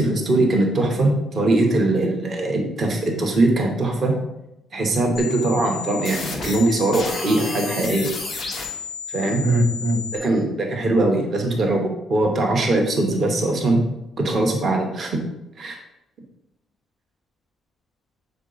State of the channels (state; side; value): normal; both; correlation 0.76